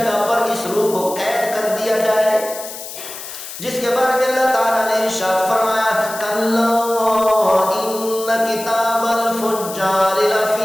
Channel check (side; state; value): left; noise; hiss, 11 dB below the sound